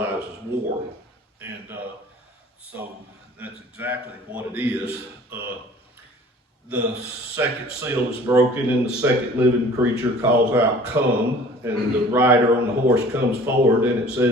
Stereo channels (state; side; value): normal; both; correlation 0.48